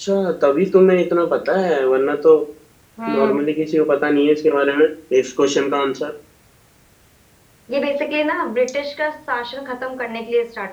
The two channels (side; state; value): both; identical; correlation 1.00